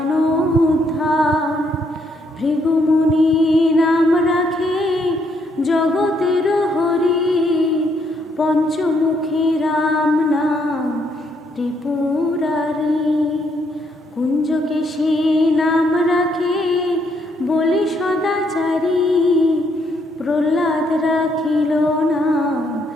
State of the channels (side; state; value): both; normal; correlation 0.73